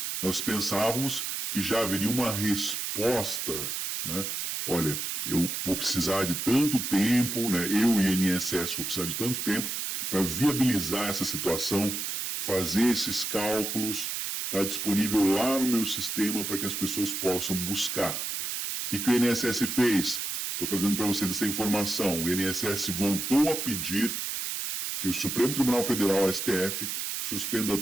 Nós pensávamos que já haveria uma resposta, né? Olha, eu vou precisar de tanto tempo, né? Eu e o INSS vou precisar de tanto tempo para viabilizar essa situação, fazer esses cálculos, está disponível lá no meu sistema para que as pessoas possam buscar. O que o INSS fez? Estou trazendo para vocês essa informação. O INSS voltou a pedir que o Supremo Tribunal Federal, STF, suspenda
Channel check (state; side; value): noise; right; hiss, 3 dB below the sound